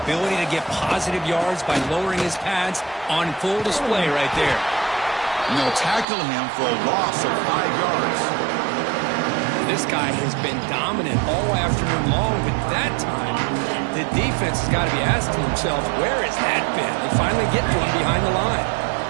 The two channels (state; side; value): drops out; left; at 6.1 s